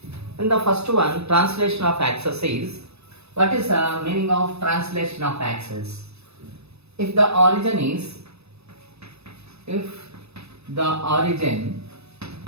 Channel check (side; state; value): left; late; 0.79 ms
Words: In the first one, translation of axis is, what is the meaning of translation of axis? If the origin is